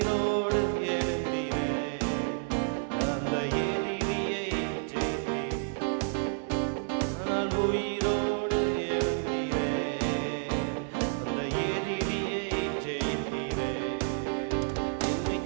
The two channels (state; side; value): silent; left; digital silence